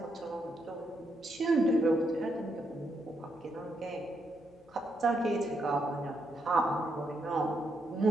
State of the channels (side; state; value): left; noise; hum, 28 dB below the sound